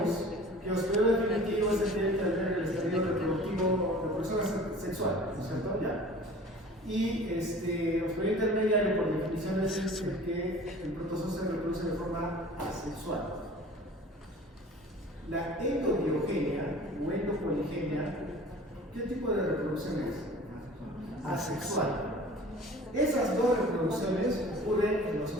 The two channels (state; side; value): normal; both; correlation 0.44